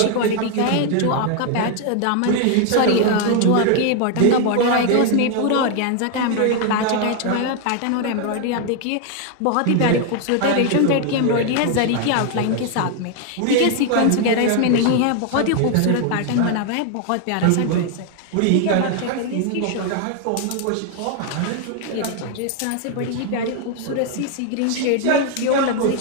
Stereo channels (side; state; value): both; different; correlation 0.00